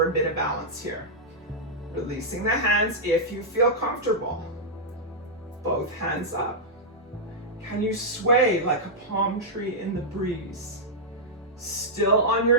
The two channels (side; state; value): both; normal; correlation -0.08